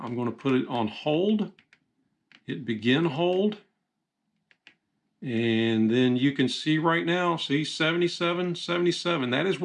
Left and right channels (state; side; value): identical; both; correlation 1.00